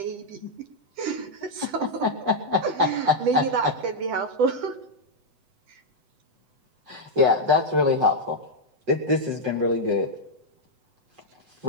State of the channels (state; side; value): late; left; 8.0 ms